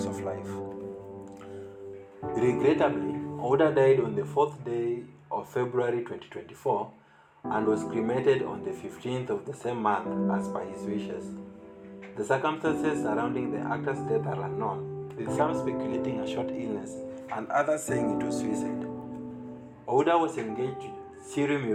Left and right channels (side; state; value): both; identical; correlation 1.00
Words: of life. Regrettably, Ouda died on the 4th day of February 2024 and was cremated on the 15th of the same month as per his wishes. The circumstances surrounding the actor's death are unknown, with some speculating a short illness and others saying it was suicide. Ouda was engaged to Siri